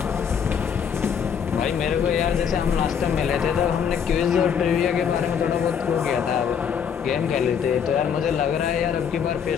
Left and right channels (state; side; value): quieter; right; 7.5 dB